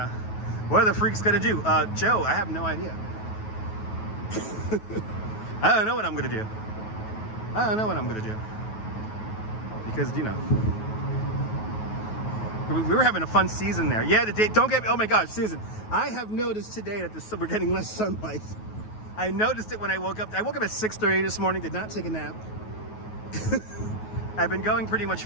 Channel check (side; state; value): right; late; 9.3 ms